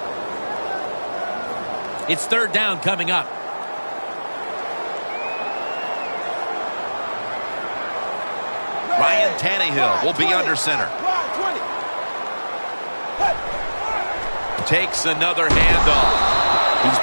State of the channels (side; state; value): both; inverted; correlation -1.00